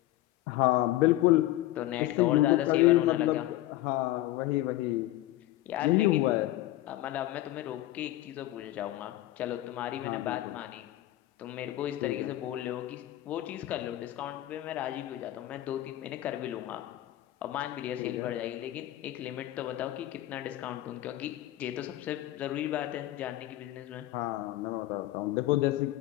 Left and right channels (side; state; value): right; quieter; 15.6 dB